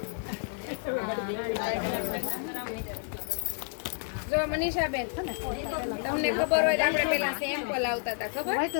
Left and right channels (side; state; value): right; silent; 58 dB below the other